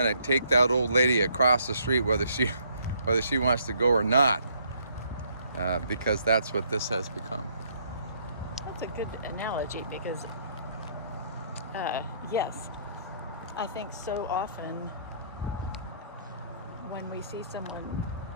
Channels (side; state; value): both; inverted; correlation -0.66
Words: of take that old lady across the street whether she wants to go or not, because that's what this has become. That's a good analogy because, yes, I think so often when we see someone